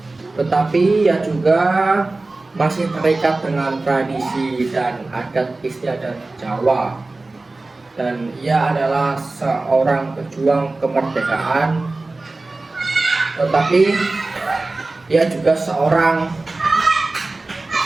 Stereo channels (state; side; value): quieter; left; 3.2 dB